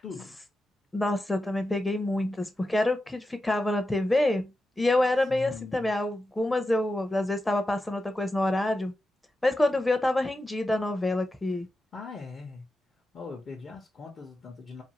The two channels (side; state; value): both; normal; correlation 0.90